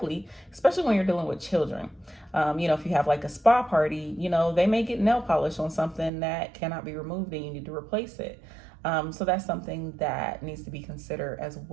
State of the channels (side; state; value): left; drops out; at 6.1 s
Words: especially when you're dealing with children. If you have like a spa party, they may get nail polish on something that cannot be removed and you need to replace it. So that's something that needs to be considered as